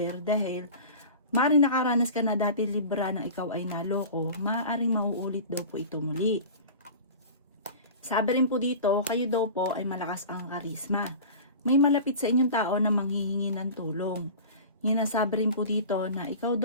dahil maaring nakaranas ka na dati Libra na ikaw ay naloko, maaring mauulit daw po ito muli. Sabi rin po dito, kayo daw po ay malakas ang karisma. May malapit sa inyong tao na manghihingi ng tulong. Hinasabi rin po dito na ikaw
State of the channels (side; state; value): both; inverted; correlation -0.36